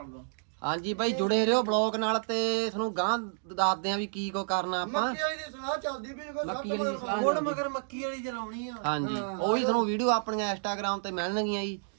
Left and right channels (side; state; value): left; silent; digital silence